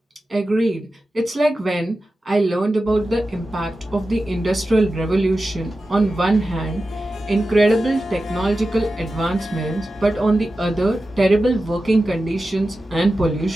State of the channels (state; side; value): normal; both; correlation 0.93